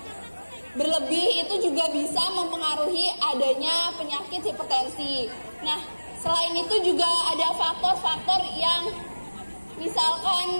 berlebih, itu juga bisa mempengaruhi adanya penyakit hipertensi. Nah, selain itu juga ada faktor-faktor yang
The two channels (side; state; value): both; inverted; correlation -1.00